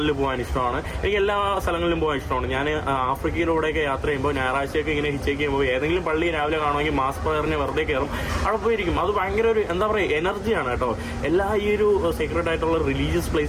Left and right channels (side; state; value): both; identical; correlation 1.00